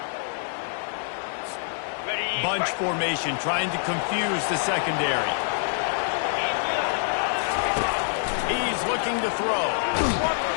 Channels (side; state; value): right; silent; digital silence